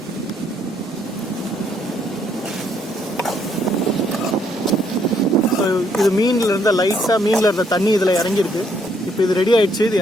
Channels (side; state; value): both; normal; correlation 0.70